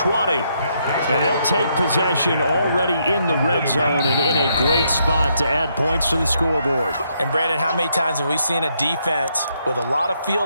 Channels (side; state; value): both; inverted; correlation -0.75